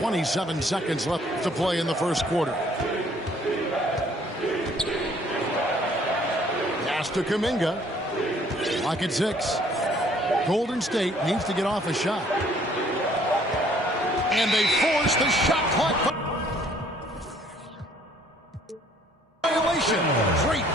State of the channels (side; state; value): both; normal; correlation 0.60